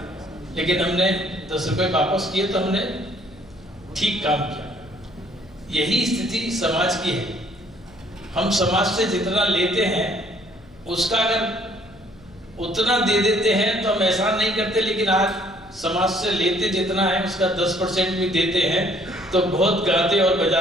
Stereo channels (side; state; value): left; noise; hum, 25 dB below the sound